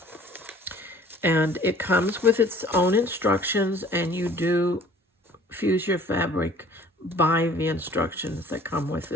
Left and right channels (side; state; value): both; normal; correlation 0.52